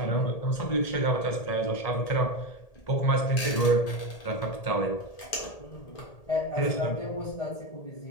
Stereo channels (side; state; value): right; late; 1.8 ms